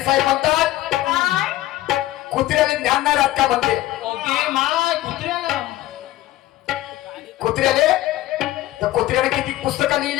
म्हणतात कुत्र्याला ज्ञान नाही राहत का म्हणते ओके मा कुत्र्याला कुत्र्याले तर कुत्र्याने किती पुस्तकं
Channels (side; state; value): right; quieter; 15.5 dB